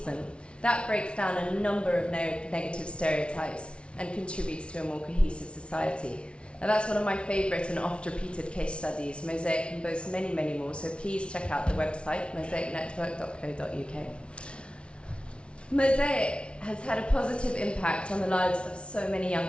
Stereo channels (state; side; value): late; right; 0.059 ms